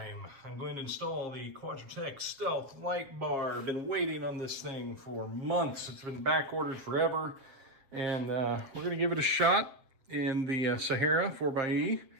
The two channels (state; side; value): late; left; 7.5 ms